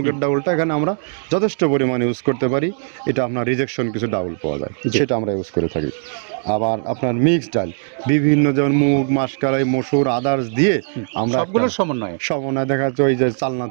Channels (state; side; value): silent; left; digital silence